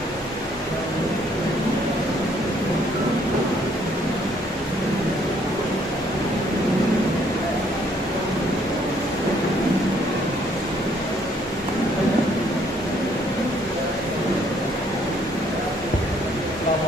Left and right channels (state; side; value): normal; both; correlation 0.66